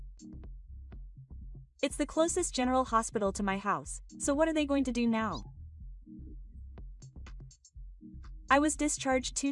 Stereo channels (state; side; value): identical; both; correlation 1.00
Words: It's the closest general hospital to my house, so what are they going to do now? I was discharged 2